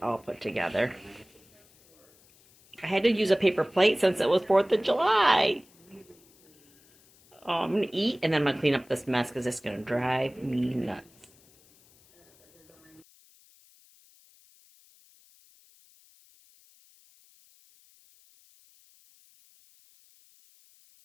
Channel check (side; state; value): left; noise; hiss, 29 dB below the sound